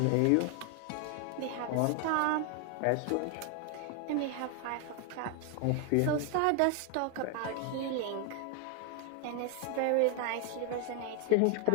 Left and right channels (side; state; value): both; different; correlation 0.01